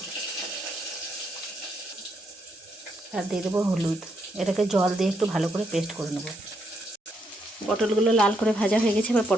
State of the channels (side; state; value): both; normal; correlation 0.77